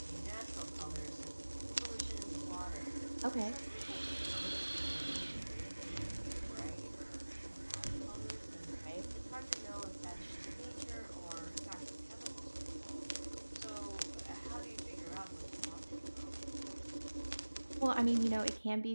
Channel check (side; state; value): both; inverted; correlation -1.00